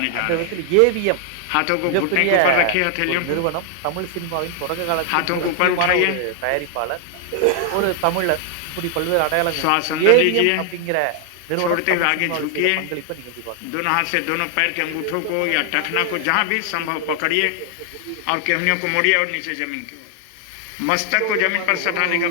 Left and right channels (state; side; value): different; both; correlation 0.00